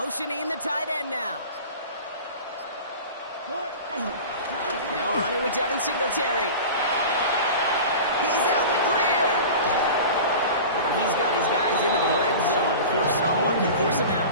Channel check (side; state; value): both; inverted; correlation -0.35